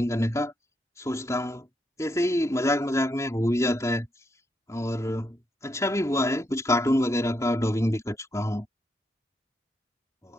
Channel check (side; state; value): both; normal; correlation 0.79